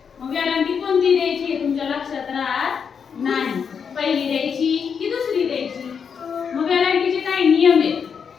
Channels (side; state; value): right; quieter; 6.6 dB